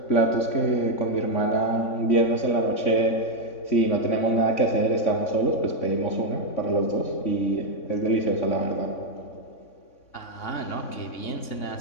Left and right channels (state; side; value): late; right; 3.6 ms